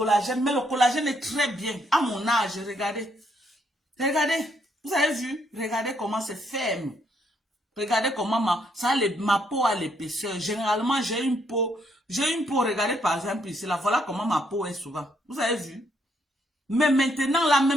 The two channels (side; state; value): both; normal; correlation 0.73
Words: Mais le collagène est très bien. À mon âge, regardez. Regardez. Vous avez vu? Regardez comment c'est ferme. Regardez comment ma peau a l'épaisseur. Généralement, j'ai une peau, regardez par exemple ici, là, voilà comment ma peau est souvent. Vous avez vu? Mais maintenant, là,